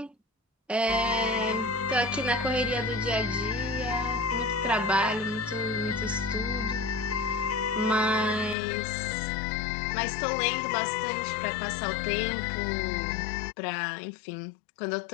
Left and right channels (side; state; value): right; drops out; at 8.6 s